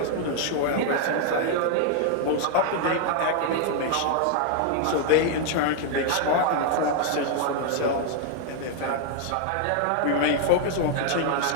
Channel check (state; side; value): different; both; correlation 0.00